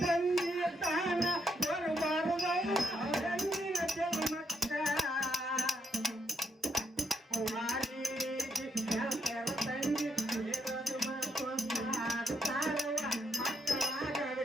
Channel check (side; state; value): both; normal; correlation 0.78